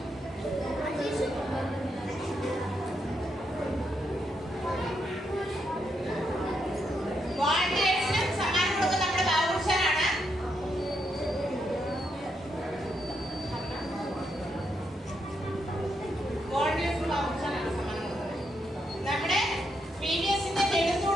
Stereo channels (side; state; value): both; normal; correlation 0.80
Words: വോളണ്ടിയേഴ്സിനും സമ്മാനം കൊടുക്കുന്ന നമ്മുടെ ബാബുഷാനാണ്. വോളണ്ടിയേഴ്സിന് ബാബുഷാനാണ് സമ്മാനം കൊടുക്കുന്നത്. നമ്മുടെ PBSന്റെ